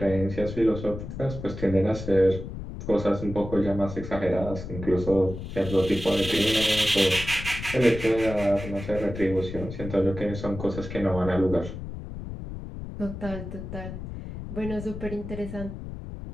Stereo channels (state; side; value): noise; left; rumble, 9 dB below the sound